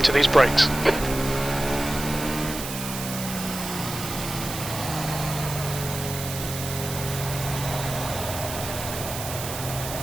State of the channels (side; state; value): right; noise; hiss, 7 dB below the sound